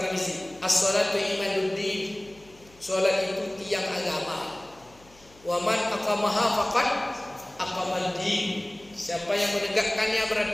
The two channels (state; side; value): noise; left; hum, 26 dB below the sound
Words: as-sholatu imaduddin. Sholat itu tiang agama. Wa man aqamaha faqad aqamaddin. Siapa yang menegakkannya